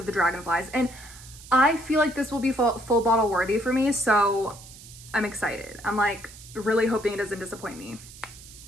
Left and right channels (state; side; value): noise; right; hiss, 18 dB below the sound